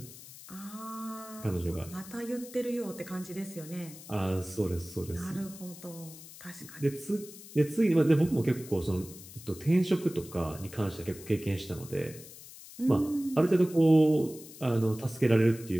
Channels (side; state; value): left; noise; hiss, 17 dB below the sound